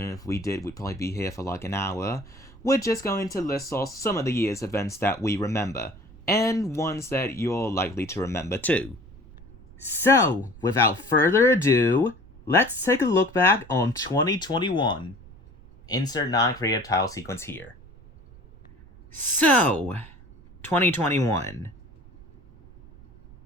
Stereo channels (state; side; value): noise; right; rumble, 22 dB below the sound